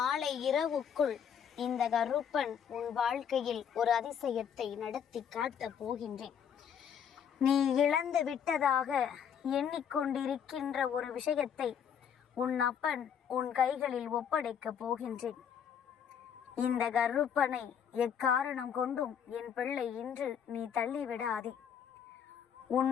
இரவுக்குள் இந்த கருப்பன் உன் வாழ்க்கையில் ஒரு அதிசயத்தை நடத்தி காட்டப் போகின்றேன். நீ இழந்து விட்டதாக எண்ணிக்கொண்டிருக்கின்ற ஒரு விஷயத்தை உன் அப்பன் உன் கைகளில் ஒப்படைக்கப் போகின்றேன். இந்த கருப்பனை எக்காரணம் கொண்டும் என் பிள்ளை இன்று நீ தள்ளிவிடாதே.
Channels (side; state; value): right; quieter; 8.0 dB